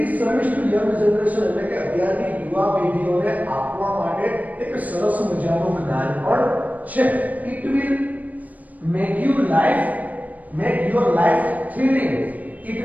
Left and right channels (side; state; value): left; late; 0.076 ms